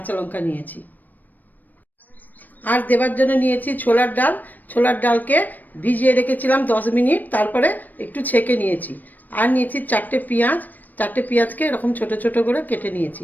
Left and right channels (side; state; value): right; late; 0.086 ms